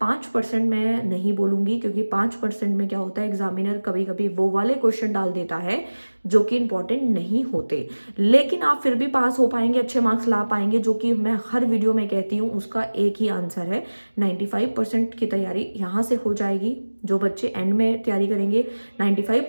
5% मैं नहीं बोलूँगी, क्योंकि 5% में क्या होता है, एग्जामिनर कभी कभी वो वाले क्वेश्चन डाल देता है जो कि इम्पॉर्टेंट नहीं होते, लेकिन आप फिर भी पास हो पाएंगे, अच्छे मार्क्स ला पाएंगे, जो कि मैं हर वीडियो में कहती हूँ उसका एक ही आंसर है। 95% की तैयारी यहाँ से हो जाएगी। जो बच्चे एंड में तैयारी करेंगे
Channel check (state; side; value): inverted; both; correlation -1.00